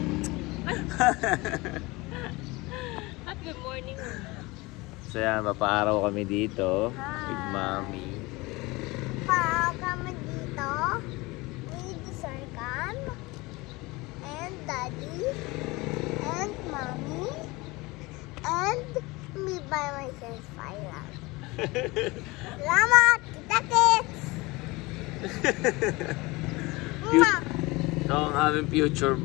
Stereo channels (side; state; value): right; quieter; 22.9 dB